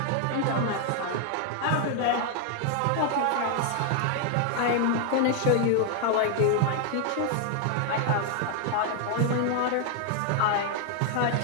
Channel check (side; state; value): both; different; correlation 0.00